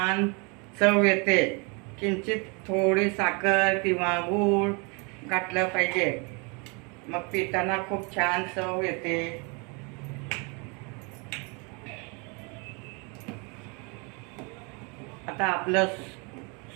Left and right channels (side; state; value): left; quieter; 31.9 dB